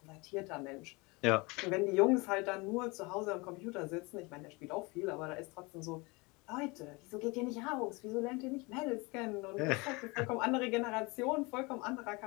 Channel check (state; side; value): quieter; right; 26.2 dB